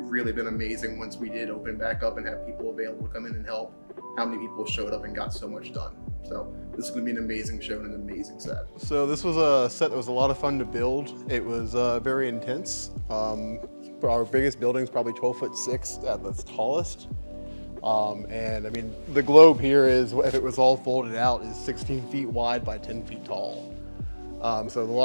been amazing once we did open back up and have people available to come in and help, how many people showed up and got so much done. So this is gonna be an amazing show and an amazing set. So this was a set that was a lot of fun to build. It was very intense. Our biggest building is probably 12'6" at the tallest. And I mean, the globe here is, if it was all folded out, is 16 feet wide by 10 feet tall. So a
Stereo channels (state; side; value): inverted; both; correlation -1.00